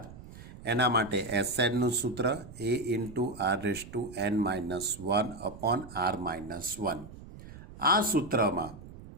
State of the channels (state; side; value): noise; right; rumble, 16 dB below the sound